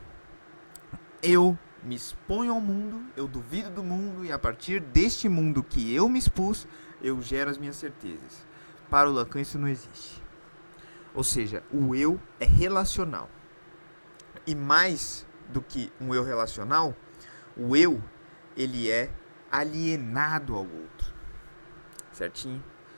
Eu me exponho ao mundo, eu duvido do mundo, e a partir deste mundo que eu me expus, eu gero as minhas certezas. Para o Lacan isso não existe. Ou seja, o eu é relacional. E mais do que um eu relacional, o eu, ele é alienado ao outro. Certinho?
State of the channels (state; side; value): inverted; both; correlation -1.00